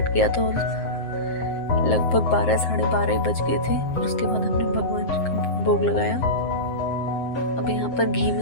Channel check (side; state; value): right; late; 7.6 ms